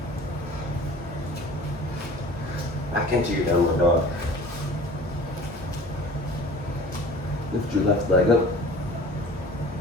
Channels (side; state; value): both; normal; correlation 0.44